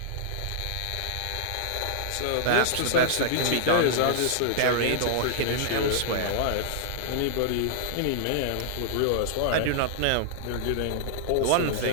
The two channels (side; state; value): both; different; correlation -0.01